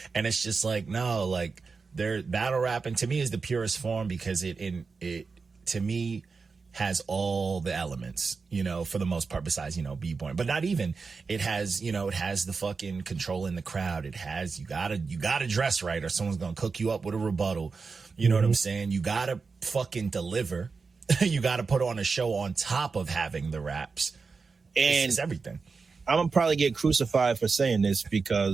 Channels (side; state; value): left; quieter; 4.7 dB